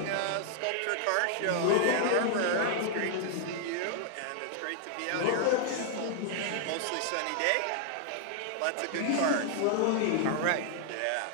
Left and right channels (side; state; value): both; different; correlation 0.00